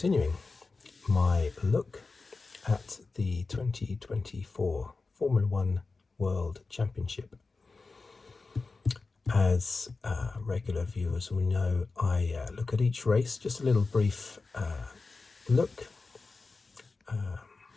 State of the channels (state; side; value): quieter; right; 3.9 dB